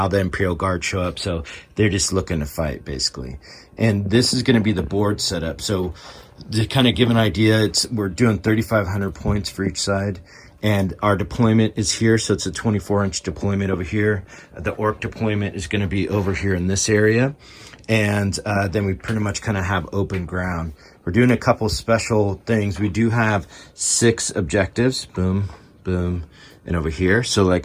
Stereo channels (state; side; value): identical; both; correlation 1.00